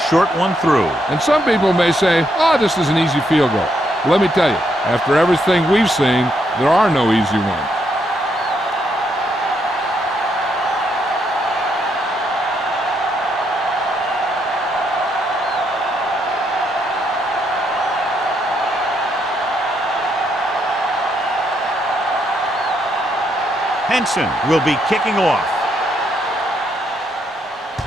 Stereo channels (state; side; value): normal; both; correlation 0.76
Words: one through. And some people may say, oh, this is an easy field goal. Well, let me tell you, after everything we've seen, there are no easy ones. Henson will be kicking off.